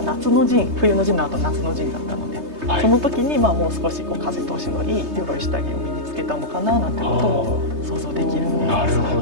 夏の陣、冬の陣の後夏の陣だったので、はいその時にまあもう少しこう風通しのいい鎧下着を身につけたのかななんてことも想像できるものです。なるほ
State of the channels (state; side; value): late; left; 3.2 ms